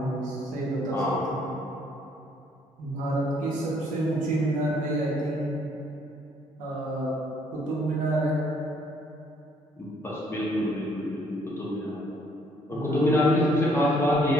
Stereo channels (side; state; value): both; normal; correlation 0.65